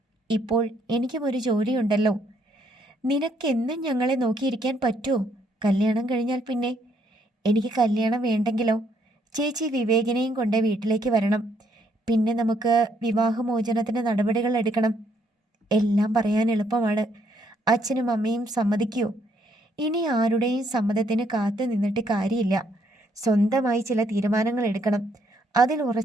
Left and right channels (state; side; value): normal; both; correlation 0.70